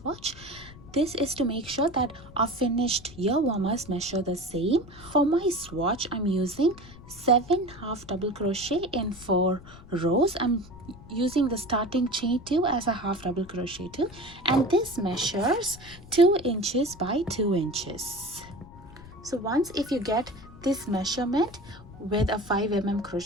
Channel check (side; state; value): left; noise; rumble, 19 dB below the sound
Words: This is to make sure that our finished ear warmers measure the same. For my swatch, I'm using 7 half double crochet in 4 rows. I'm using the starting chain 2 as a half double crochet 2, and this measures 2 inches by 2 inches. So once if you get this measurement with a 5mm